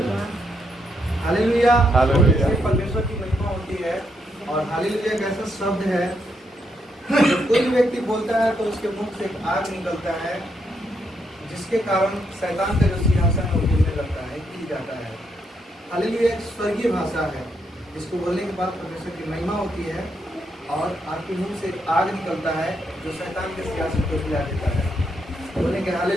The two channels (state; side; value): normal; both; correlation 0.78